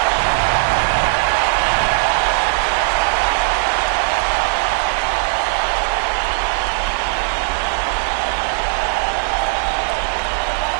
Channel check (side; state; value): left; silent; 64 dB below the other